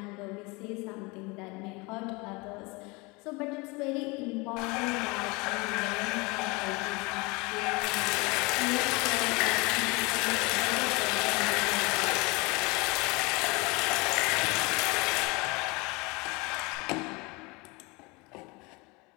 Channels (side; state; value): right; quieter; 26.2 dB